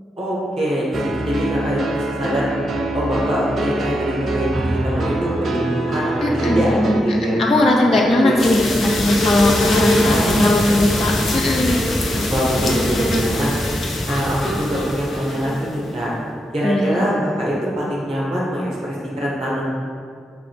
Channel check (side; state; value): both; normal; correlation 0.83